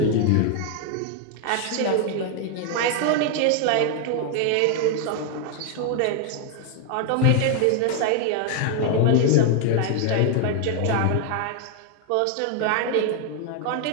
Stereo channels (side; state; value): both; different; correlation 0.00